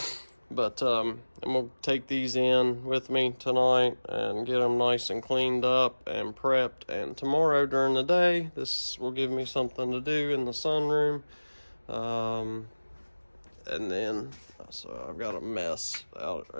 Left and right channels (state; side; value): inverted; both; correlation -1.00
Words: but I'm gonna take these in with me tonight and get them nice and cleaned up and prepped, and tomorrow during the day this will give me something to do in the sunroom. And then so I've got a mess out